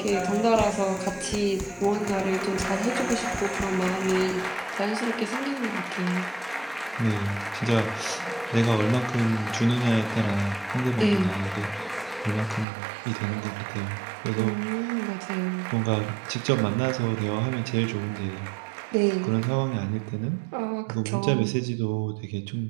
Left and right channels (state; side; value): drops out; left; at 12.7 s